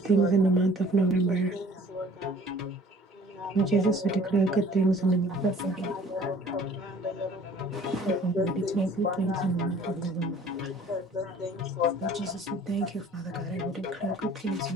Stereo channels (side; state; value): both; normal; correlation 0.52